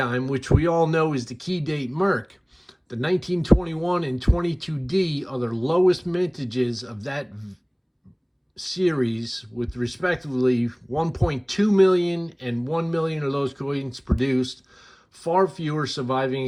which we all know is the key date Merc, the 1921 and 22D are the lowest mintages of that series, with respectively 1.2 million and 1 million of those coins produced, far fewer surviving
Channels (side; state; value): both; identical; correlation 1.00